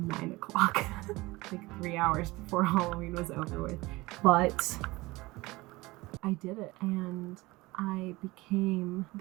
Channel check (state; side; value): quieter; left; 21.2 dB